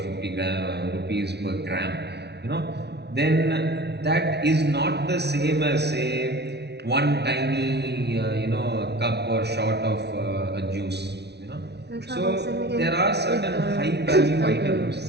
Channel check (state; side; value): late; left; 0.49 ms